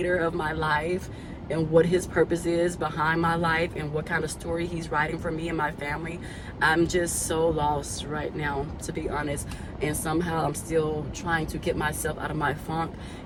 of my life, and what his purpose is behind my life, and what kind of story he's writing for me and my family. I'm just so lost right now, to be honest. And somehow I'm still trying to get myself out of my funk,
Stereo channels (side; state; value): both; identical; correlation 1.00